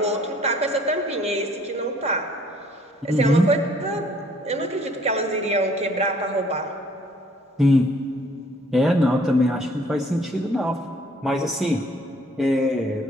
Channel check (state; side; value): normal; both; correlation 0.60